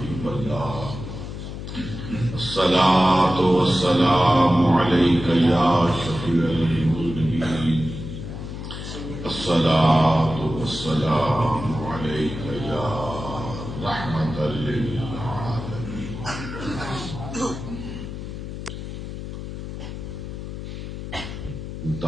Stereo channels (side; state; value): left; noise; hum, 8 dB below the sound